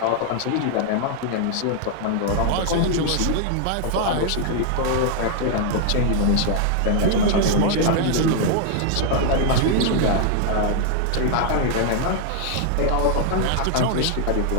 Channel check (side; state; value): both; different; correlation 0.00